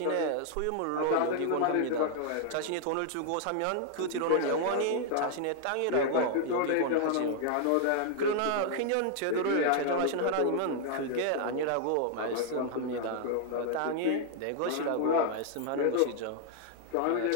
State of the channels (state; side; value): different; both; correlation 0.00